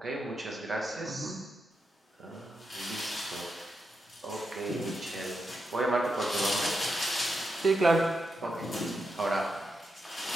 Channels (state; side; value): normal; both; correlation 0.86